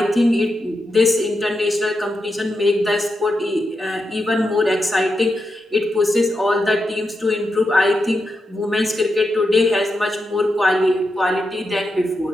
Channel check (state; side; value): normal; both; correlation 0.86